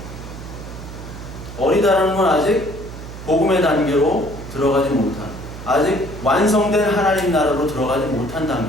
어리다라는 건 아직 복음의 단계로 들어가지 못한, 아직 완성된 하나님 나라로 들어가지 못한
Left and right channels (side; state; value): right; noise; hum, 12 dB below the sound